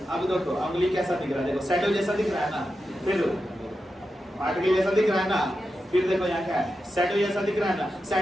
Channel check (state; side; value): normal; both; correlation 0.89